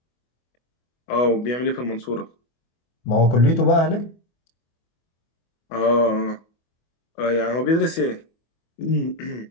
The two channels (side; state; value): right; late; 24 ms